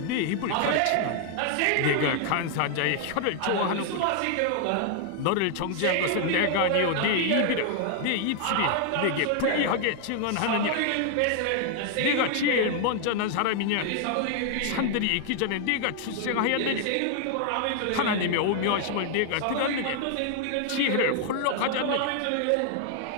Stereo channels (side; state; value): both; different; correlation 0.00